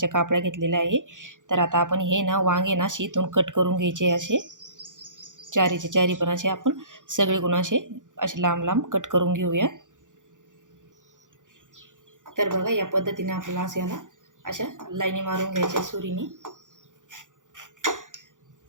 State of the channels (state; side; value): late; left; 0.87 ms